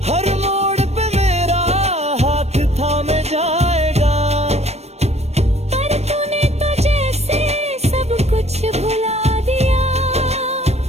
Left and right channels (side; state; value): left; late; 0.31 ms